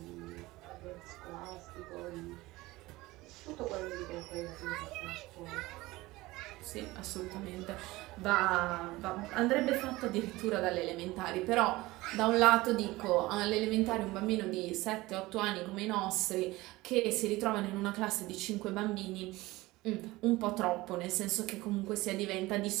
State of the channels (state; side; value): quieter; left; 19.7 dB